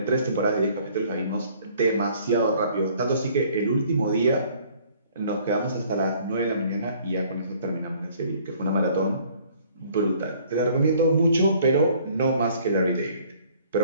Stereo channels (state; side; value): inverted; both; correlation -0.58